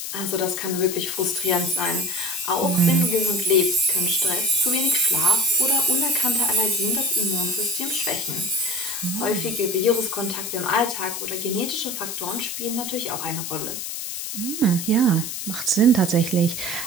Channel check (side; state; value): left; noise; hiss, 5 dB below the sound